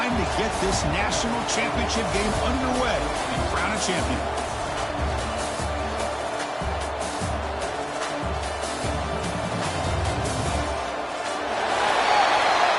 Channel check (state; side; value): identical; both; correlation 1.00